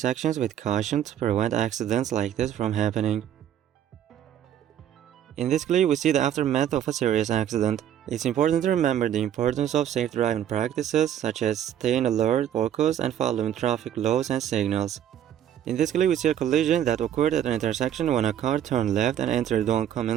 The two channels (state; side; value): quieter; left; 10.3 dB